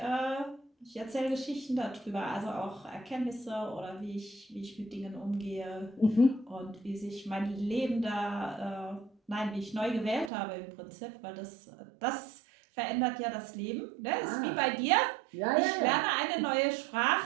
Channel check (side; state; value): left; drops out; at 10.3 s